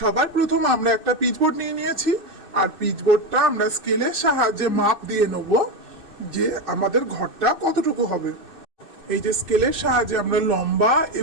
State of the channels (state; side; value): late; left; 2.6 ms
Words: প্রথম আমরা একটা পিচবোর্ড নিয়ে নিয়েছি, আর পিচবোর্ডটা আমরা স্কেলের সাহায্যে মাপ দিয়ে নেব যে আমাদের ঘরটা কতটুকু হবে। এই যে স্কেলের সাহায্যে আমরা লম্বা